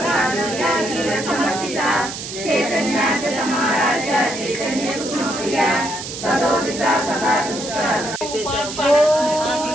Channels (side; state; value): right; noise; hiss, 8 dB below the sound